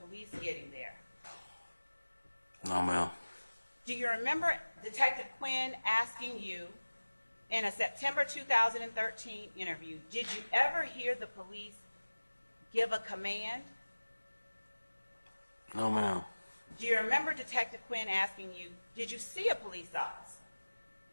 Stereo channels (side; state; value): both; inverted; correlation -1.00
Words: getting there? No, ma'am. Do you remember Detective Quinn asking you in a September 2013 interview, did you ever hear the police give a command? No, ma'am. Do you remember Detective Quinn asking you, did you see a police officer?